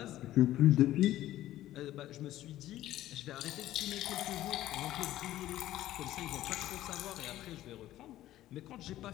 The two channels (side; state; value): right; quieter; 14.2 dB